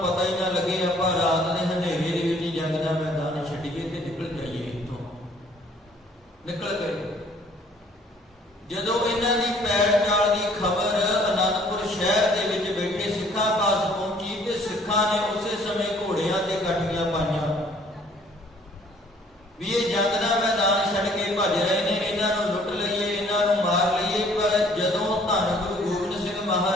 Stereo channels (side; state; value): both; normal; correlation 0.59